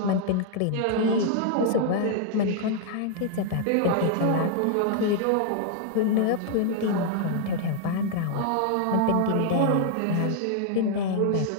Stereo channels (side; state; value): both; different; correlation 0.00